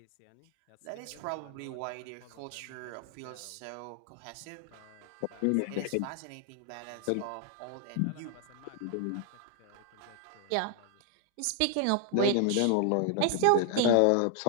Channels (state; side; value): different; both; correlation 0.00